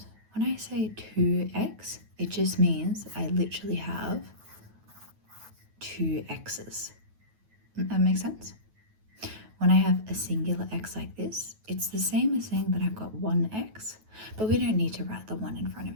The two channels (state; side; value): late; left; 9.3 ms